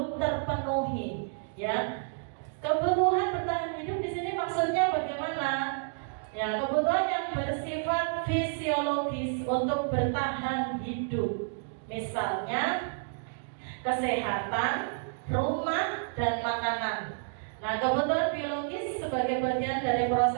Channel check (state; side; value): silent; left; digital silence